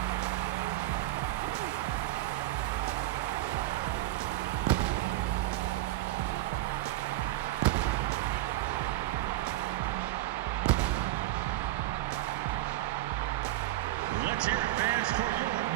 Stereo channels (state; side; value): quieter; left; 15.8 dB